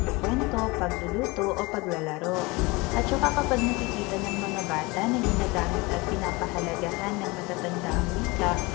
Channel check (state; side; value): quieter; right; 24.5 dB